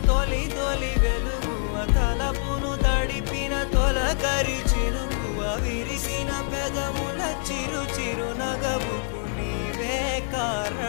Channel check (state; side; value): silent; right; digital silence